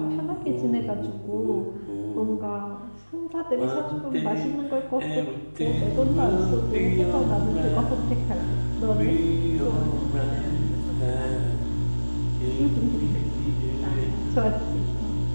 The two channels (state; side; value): inverted; both; correlation -1.00